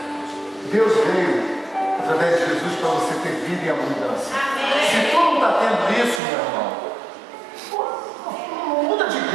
Deus veio, através de Jesus, para você ter vida e abundância. Se tu não está tendo isso, meu irmão, não muda de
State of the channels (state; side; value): drops out; left; at 6.2 s